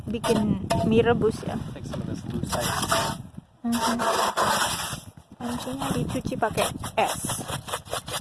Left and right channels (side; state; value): both; identical; correlation 1.00